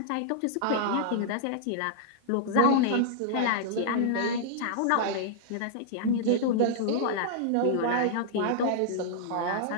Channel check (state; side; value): different; both; correlation -0.01